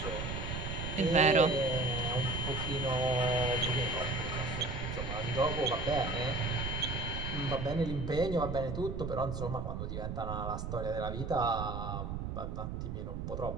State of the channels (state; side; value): noise; right; rumble, 4 dB below the sound